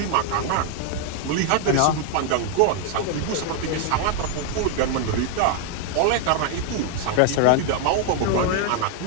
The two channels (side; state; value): both; different; correlation 0.00